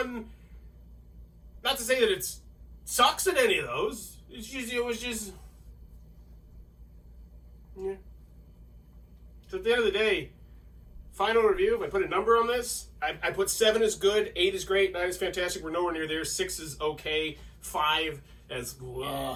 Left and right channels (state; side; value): identical; both; correlation 1.00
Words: Not to say that it sucks at any of those. It was just, yeah. So at the end of the day, final review, if I put a number on this, I put 7 is good, 8 is great, 9 is fantastic, we're nowhere near there, 6 is okay, 5 as